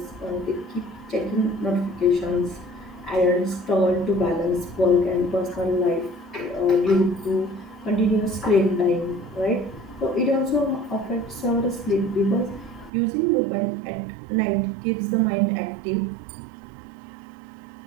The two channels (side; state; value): left; drops out; at 12.9 s